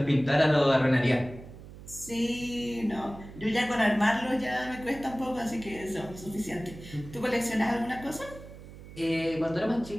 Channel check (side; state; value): right; noise; hum, 16 dB below the sound